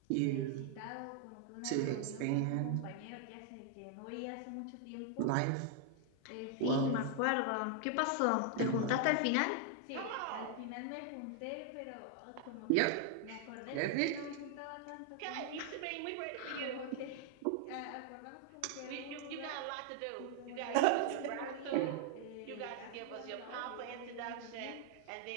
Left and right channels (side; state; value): both; different; correlation 0.00